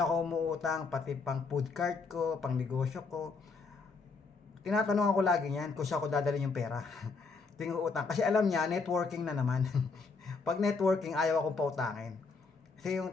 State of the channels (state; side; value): quieter; right; 4.4 dB